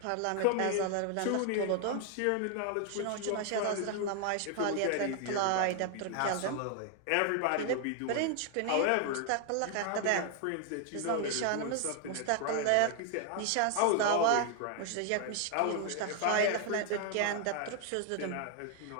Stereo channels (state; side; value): different; both; correlation 0.00